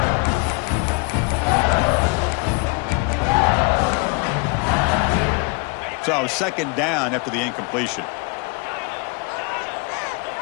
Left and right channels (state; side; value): quieter; right; 30.3 dB